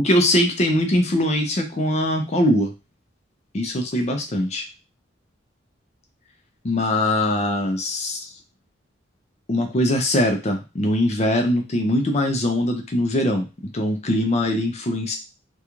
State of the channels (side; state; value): both; normal; correlation 0.56